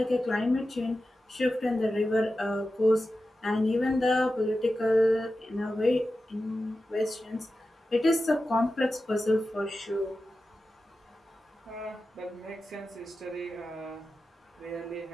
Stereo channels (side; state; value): both; normal; correlation 0.93